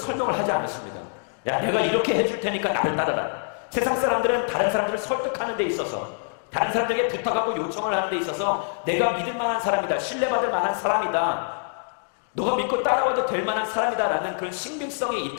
하지 않으십니다. 야, 내가 이렇게 해줄 테니까 나를 따라라. 세상 사람들은 다른 사람들을 설득하는 데 있어서, 다른 사람들에게 부탁하고 요청을 하는 데 있어서 내가 믿을 만한 사람이다, 신뢰받을 만한 사람이다, 너가 믿고 따라와도 될 만한 사람이다 라는 그런 신빙성이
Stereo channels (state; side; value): silent; right; digital silence